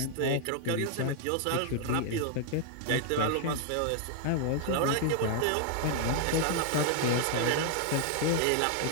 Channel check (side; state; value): both; different; correlation 0.00